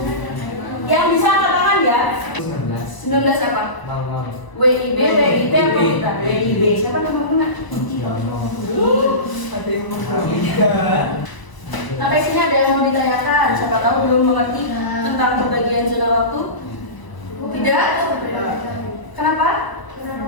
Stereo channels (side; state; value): right; late; 1.0 ms